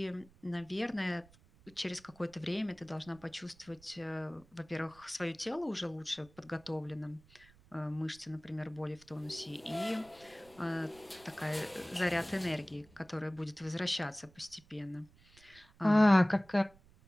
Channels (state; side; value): noise; right; rumble, 26 dB below the sound